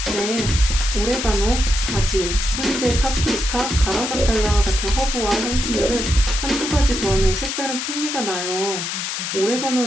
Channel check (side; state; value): left; noise; hiss, 3 dB below the sound